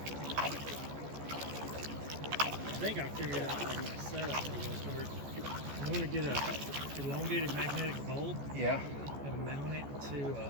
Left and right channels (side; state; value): left; late; 14 ms